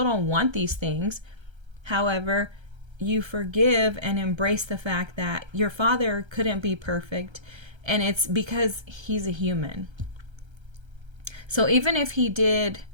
don't want these things. However, you forgive and embrace the fact that your father couldn't be perfect, and it's because he's a human. So even if he did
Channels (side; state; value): left; late; 1.3 ms